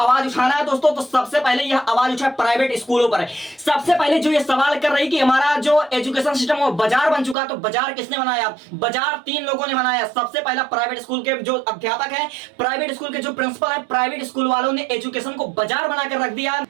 उठाना है दोस्तों, तो सबसे पहले यह आवाज उठाए प्राइवेट स्कूलों पर। सबसे पहले जो ये सवाल कर रही कि हमारा जो एजुकेशन सिस्टम वो बाजार बन चुका, तो बाजार किसने बनाया? बाजार तीन लोगों ने बनाया। सबसे पहला प्राइवेट स्कूल के जो अध्यापक है, प्राइवेट स्कूल के जो प्रिंसिपल है, प्राइवेट स्कूल वालों ने एजुकेशन को बाजार बनाकर रख दिया।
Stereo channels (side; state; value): left; drops out; at 7.4 s